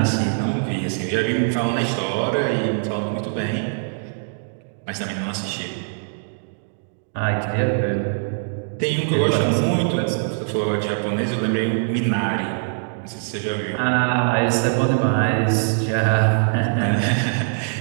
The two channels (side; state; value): left; silent; digital silence